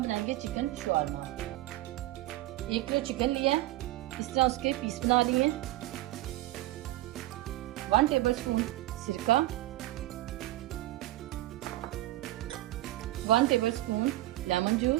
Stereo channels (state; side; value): quieter; left; 16.9 dB